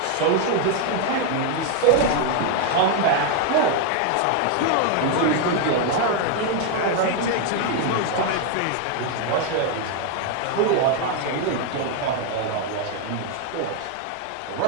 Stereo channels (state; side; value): different; both; correlation 0.00